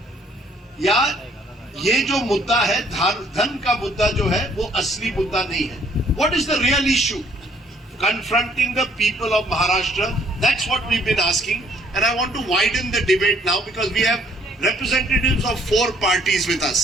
या ये जो मुद्दा है धन का मुद्दा जो है वो असली मुद्दा नहीं है? What is the real issue confronting the people of Maharashtra? That's what we've been asking, and I want to widen the debate now because we have representatives of 4 parties with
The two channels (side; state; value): both; normal; correlation 0.63